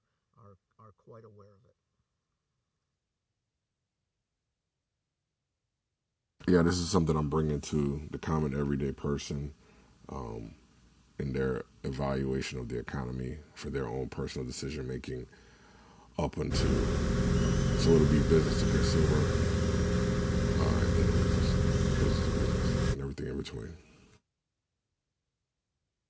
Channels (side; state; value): both; identical; correlation 1.00